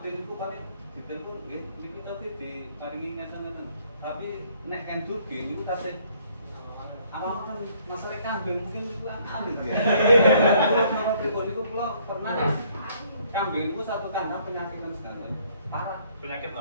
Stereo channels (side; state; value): both; inverted; correlation -0.63